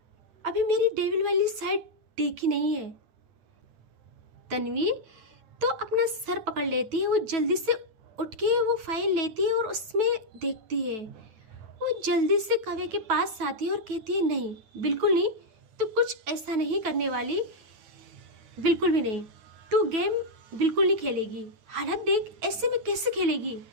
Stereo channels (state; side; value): late; left; 9.2 ms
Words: डेविल वाली साइड देखी नहीं है। तन्वी तो अपना सर पकड़ लेती है। वो जल्दी से उठ के वो फाइल लेती है और उसमें देखती है। वो जल्दी से काव्या के पास आती है और कहती है नहीं, बिल्कुल नहीं, तू कुछ ऐसा नहीं करने वाली, बिल्कुल भी नहीं। तू गेम बिल्कुल नहीं खेलेगी। हालत देख, ऐसे में कैसे खेलेगी?